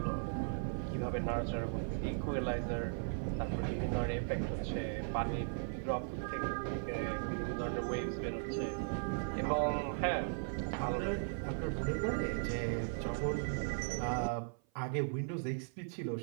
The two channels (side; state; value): left; silent; 53 dB below the other